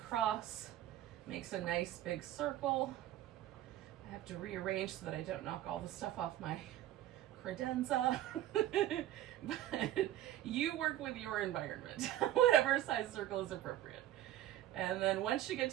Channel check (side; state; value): left; quieter; 13.4 dB